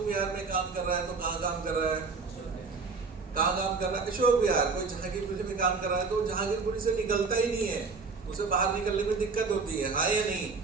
विहार में काम कर रहा है तो कहाँ काम कर रहा है? कहाँ काम कर रहा है? अशोक विहार। कोई जहांगीरपुरी में काम कर रहा है तो जहांगीरपुरी से निकलता ही नहीं है, उसे बाहर निकलने में दिक्कत होती है, हाँ या नहीं।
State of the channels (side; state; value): left; quieter; 4.6 dB